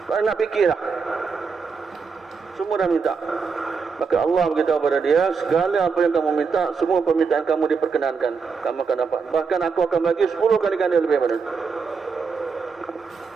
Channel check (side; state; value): left; quieter; 5.3 dB